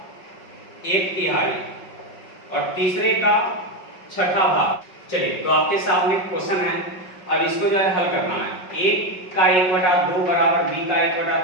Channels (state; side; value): late; right; 5.4 ms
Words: 1/3 और तीसरे का 1/6 भाग। चलिए तो आपके सामने क्वेश्चन है, अब इसको जो है हल करना है। a का 1/2 बराबर b का